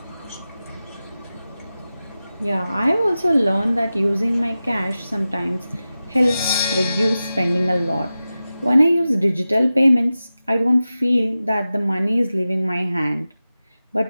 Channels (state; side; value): inverted; both; correlation -0.94